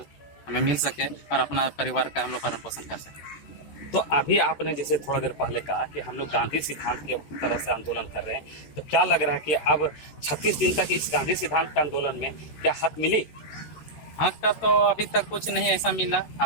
हमें मिल सके और अपना परिवार का हम लोग भरण पोषण कर सके। तो अभी आपने जैसे थोड़ा देर पहले कहा कि हम लोग गांधी सिद्धांत के तरह से आंदोलन कर रहे हैं, तो क्या लग रहा है कि अब 36 दिन तक इस गांधी सिद्धांत के आंदोलन में क्या हक मिली? हक का तो अभी तक कुछ नहीं ऐसा मिला,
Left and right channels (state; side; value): late; right; 13 ms